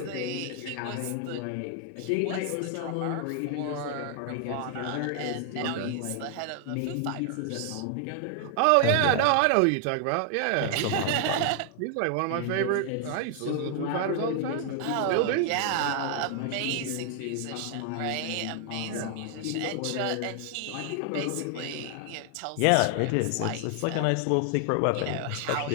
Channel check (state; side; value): different; both; correlation 0.00